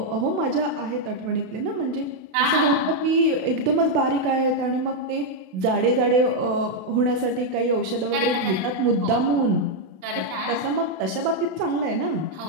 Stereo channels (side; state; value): left; late; 32 ms